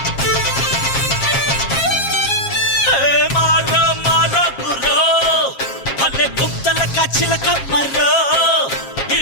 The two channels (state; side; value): late; right; 7.4 ms